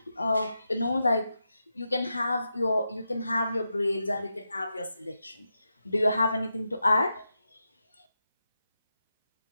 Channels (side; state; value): both; inverted; correlation -0.88